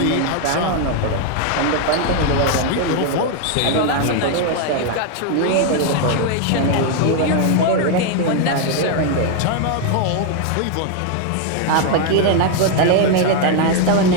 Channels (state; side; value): different; both; correlation 0.01